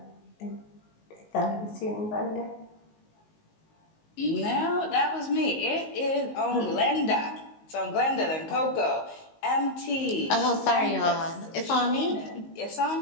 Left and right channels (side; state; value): right; late; 19 ms